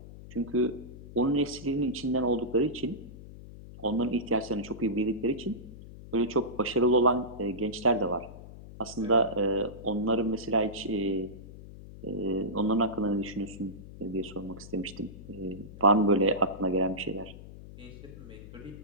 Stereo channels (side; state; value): left; noise; hum, 15 dB below the sound